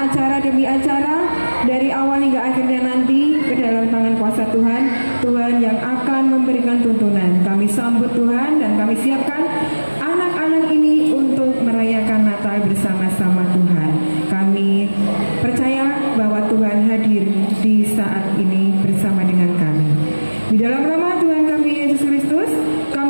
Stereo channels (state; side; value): inverted; both; correlation -1.00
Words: demi acara, dari awal hingga akhirnya nanti ke dalam tangan kuasa Tuhan. Tuhan yang akan memberikan tuntunan. Kami sambut Tuhan, dan kami siapkan anak-anak ini untuk merayakan Natal bersama-sama Tuhan. Kami percaya bahwa Tuhan hadir di saat ini bersama dengan kami. Di dalam nama Tuhan kami Yesus Kristus,